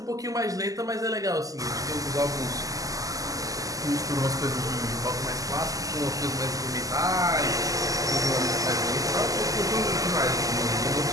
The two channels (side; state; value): left; late; 0.17 ms